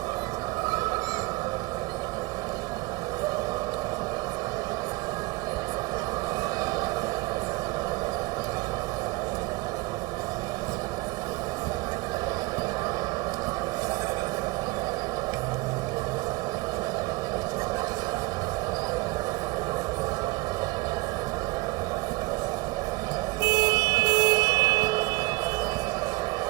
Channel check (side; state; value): left; quieter; 23.2 dB